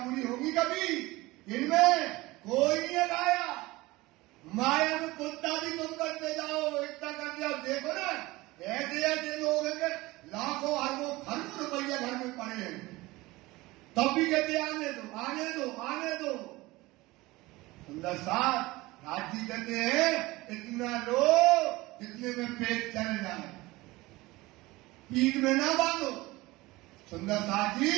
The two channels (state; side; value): quieter; left; 20.4 dB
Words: होगी कभी? इनमें कोई नहीं अगाया। माया में कुत्ता भी तुम करते जाओ, इतना कर दिया। देखो ना, ऐसे ऐसे लोग हैं कि लाखों अरबों खरबों रुपया घर में पड़े हैं, तब भी कहते आने दो, आने दो, आने दो। सुंदर साथ राजी कहते हैं, इतना लो जितने में पेट चल जाए, पीठ में ना बांधो। सुंदर साथ जी,